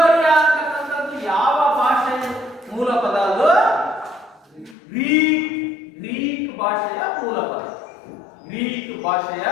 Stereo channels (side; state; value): right; drops out; at 4.8 s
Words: ಅಂತಕ್ಕಂಥದ್ದು ಯಾವ ಭಾಷೆ ಮೂಲ ಪದ? ಅದು ಗ್ರೀಕ್ ಭಾಷೆಯ ಮೂಲ ಪದ. ಗ್ರೀಕ್ ಭಾಷೆಯ